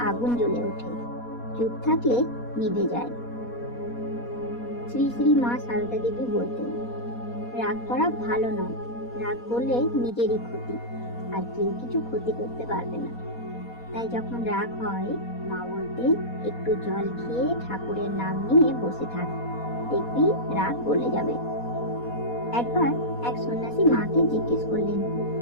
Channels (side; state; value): right; late; 4.2 ms